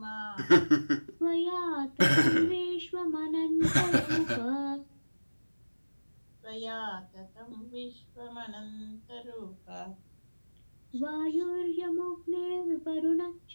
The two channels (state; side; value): inverted; both; correlation -1.00